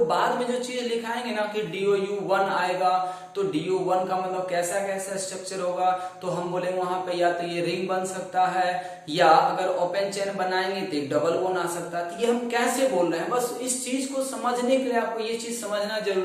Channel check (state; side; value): identical; both; correlation 1.00